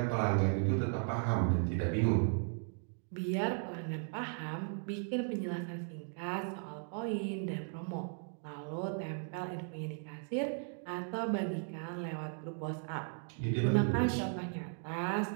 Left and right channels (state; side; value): silent; left; 53 dB below the other